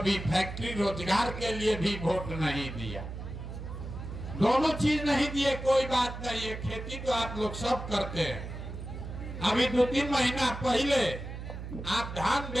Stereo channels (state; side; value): noise; right; hum, 8 dB below the sound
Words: फैक्ट्री, रोजगार के लिए भी वोट नहीं दिया। दोनों चीज नहीं दिए, कोई बात नहीं है। खेती तो आप लोग सब करते हैं। अभी 2-3 महीना पहले आप धान